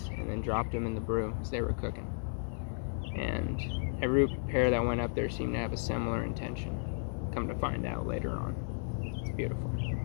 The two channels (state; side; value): silent; right; digital silence